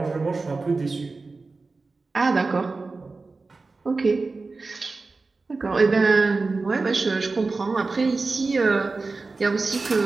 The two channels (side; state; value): left; quieter; 3.8 dB